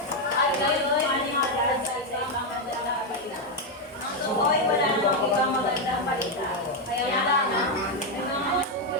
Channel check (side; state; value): both; normal; correlation 0.03